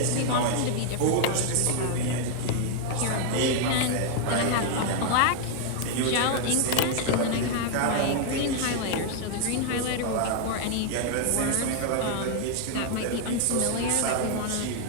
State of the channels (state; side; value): different; both; correlation 0.00